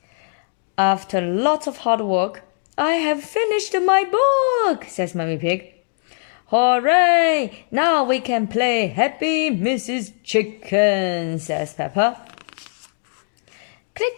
After lots of hard work, I have finished my book, says Mummy Pig. Hooray! Now we can play Happy Mrs. Chicken, says Peppa.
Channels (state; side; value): silent; right; digital silence